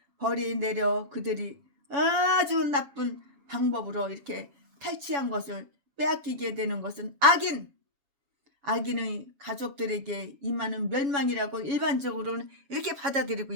벌이 내려 그들이 아주 나쁜 방법으로 이렇게 탈취한 것을 빼앗기게 되는 것은 악인의 가족들에게 임하는 멸망이라고 일반적으로는 이렇게 받아들이고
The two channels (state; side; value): late; left; 7.2 ms